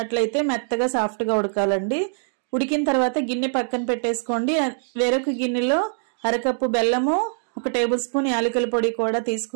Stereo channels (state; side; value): silent; left; digital silence